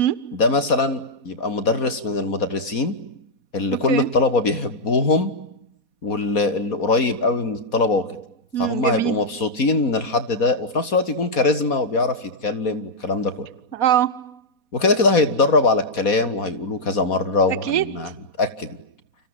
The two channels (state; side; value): late; right; 4.2 ms